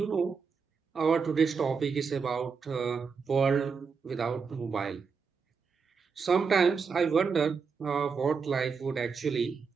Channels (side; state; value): left; quieter; 5.5 dB